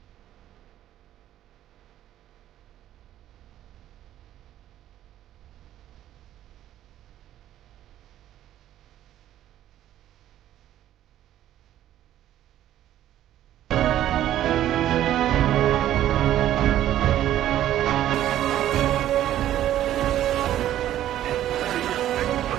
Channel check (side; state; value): left; quieter; 12.4 dB